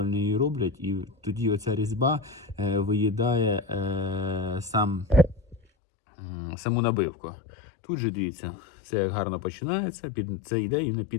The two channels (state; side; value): drops out; right; at 5.6 s